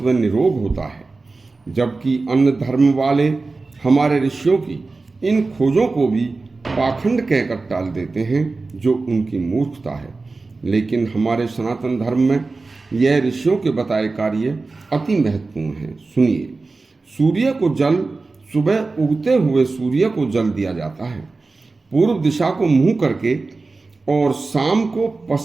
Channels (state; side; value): quieter; left; 3.7 dB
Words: व निरोग होता है। जबकि अन्य धर्म वाले हमारे ऋषियों की इन खोजों को भी पाखंड कहकर टाल देते हैं, जो उनकी मूर्खता है। लेकिन हमारे सनातन धर्म में यह ऋषियों के बताए कार्य अति महत्वपूर्ण है। सुनिए, सूर्य को जल सुबह उगते हुए सूर्य को जल दिया जाता है, पूर्व दिशा को मुंह करके, और शाम को